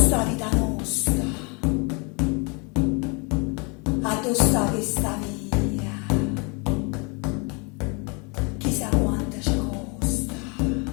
vita nostra, a tu sta questa via. Chissà quanto ci costa,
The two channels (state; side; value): quieter; right; 32.3 dB